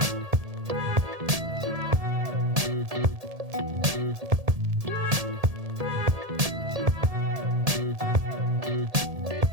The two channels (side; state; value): left; late; 1.7 ms